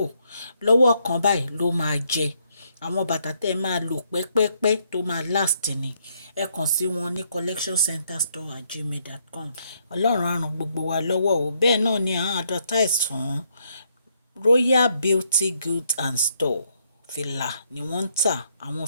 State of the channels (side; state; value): both; inverted; correlation -0.73